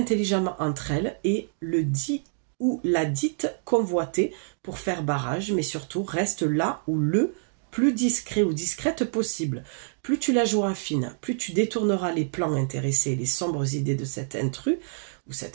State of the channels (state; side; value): silent; left; digital silence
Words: entre elles et le dit ou la dite convoitée pour faire barrage, mais surtout reste là où le plus discret ou discrète possible. Plus tu la joueras fine, plus tu détourneras les plans intéressés et les sombres idées de cet intrus ou